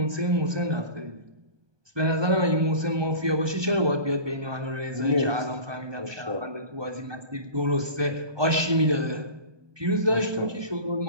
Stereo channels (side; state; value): left; late; 1.2 ms